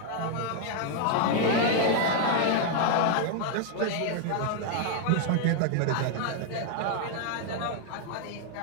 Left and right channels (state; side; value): different; both; correlation 0.00